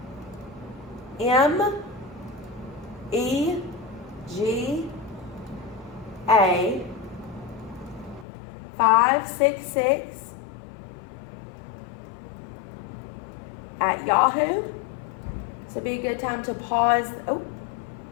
M, E, G, A, 566 at Yahoo. So it'd be a good time to pause. So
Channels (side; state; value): right; drops out; at 8.2 s